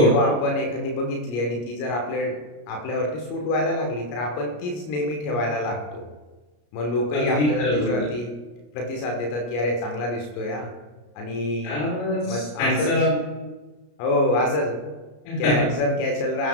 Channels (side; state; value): right; late; 33 ms